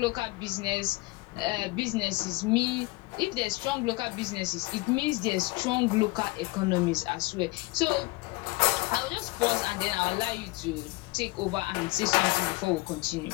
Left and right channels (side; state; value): right; quieter; 22.5 dB